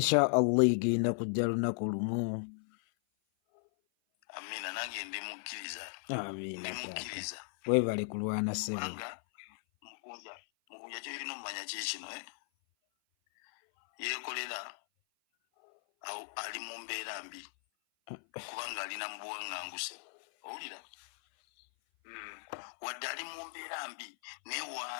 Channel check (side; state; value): right; silent; 54 dB below the other